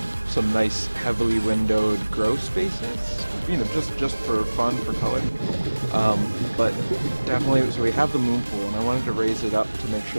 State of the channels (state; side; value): inverted; both; correlation -1.00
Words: nice heavily windowed grow spaces, you know, just for fun, for color. But definitely, so we have the moon pool, and I wanted to raise it up to make